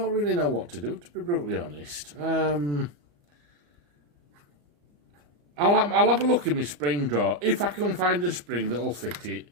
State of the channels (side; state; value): left; late; 34 ms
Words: really know what to do, to be brutally honest. I'll have a look in my spring drawer. If I can find a spring that'll fit it,